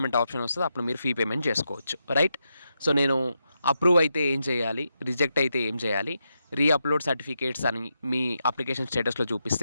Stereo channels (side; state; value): both; inverted; correlation -0.85